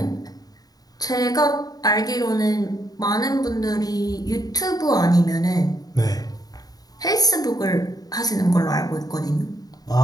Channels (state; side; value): late; right; 0.18 ms